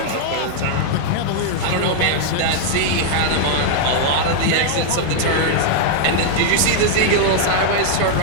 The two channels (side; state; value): both; different; correlation 0.00